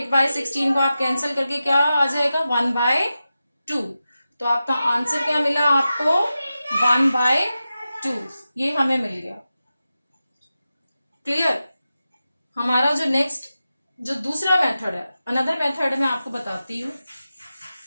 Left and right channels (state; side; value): inverted; both; correlation -0.92